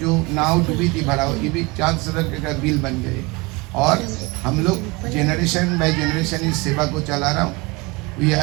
नाव डूबी थी भरा, ये भी चांद सदर का बिल बन गए। और हम लोग जनरेशन बाय जनरेशन इस सेवा को चला रहा हूँ। We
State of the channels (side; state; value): left; quieter; 25.5 dB